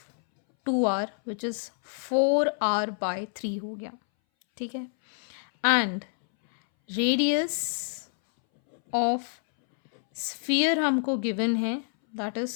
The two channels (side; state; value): right; silent; 60 dB below the other